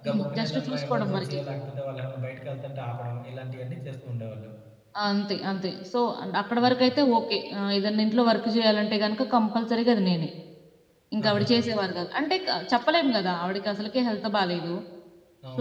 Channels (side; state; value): both; identical; correlation 1.00